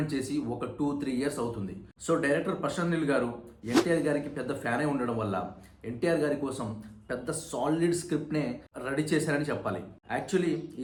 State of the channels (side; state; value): both; identical; correlation 1.00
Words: చేసి ఒక 2-3 ఇయర్స్ అవుతుంది. సో డైరెక్టర్ ప్రశాంత్ నీల్ గారు ఎన్టీఆర్ గారికి పెద్ద ఫ్యానే ఉండడం వల్ల ఎన్టీఆర్ గారి కోసం పెద్ద సాలిడ్ స్క్రిప్ట్నే రెడీ చేశారని చెప్పాలి. యాక్చువల్లీ